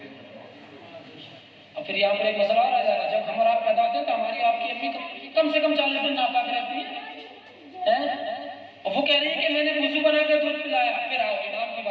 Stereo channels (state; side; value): identical; both; correlation 1.00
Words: और फिर यहाँ पर एक मसला और आ जाएगा, जब हम और आप पैदा होते हैं तो हमारी आपकी अम्मी कम से कम 40 दिन नापाक रहती है और वो कह रही है कि मैंने वुजू बना के दूध पिलाया। फिर आओ इमाम की